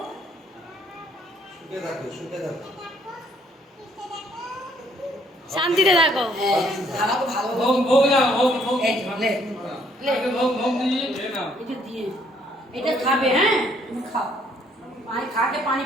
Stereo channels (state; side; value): normal; both; correlation 0.66